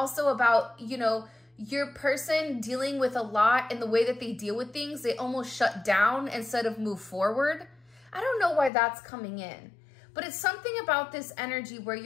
about, you know, your person dealing with a lot and the way that they deal with things, they almost shut down instead of move forward. I don't know why that's coming in, but it's something about this energy where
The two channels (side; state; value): right; drops out; at 8.7 s